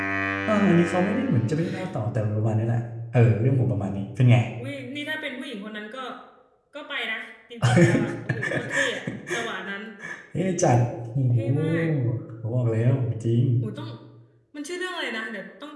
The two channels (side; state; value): both; identical; correlation 1.00